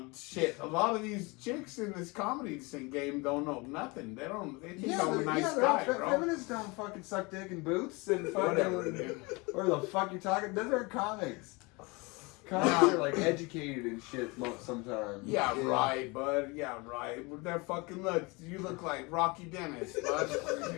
shit. A lot of these chicks in this comedy scene game don't know nothing. They think I'm a nice guy, bro. Feminists don't fucking suck dick in boots and fucking Whatever, dude. Where the fuck you talking? Those are comics. Comics are like educated and shit sometimes. Yeah, right, bud. Yeah, right. With that fucking look, you look like Rocky Dennis, bud.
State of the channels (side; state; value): right; quieter; 26.6 dB